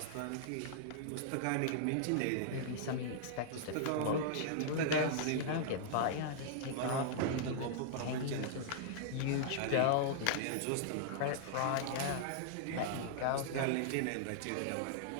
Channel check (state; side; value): different; both; correlation -0.01